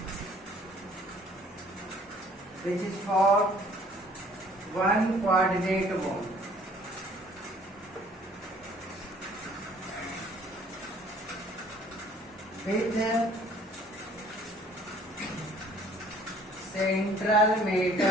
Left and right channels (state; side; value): normal; both; correlation 0.56